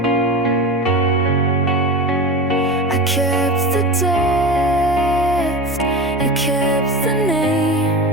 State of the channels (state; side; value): normal; both; correlation 0.27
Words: I kept the depth, you kept the name.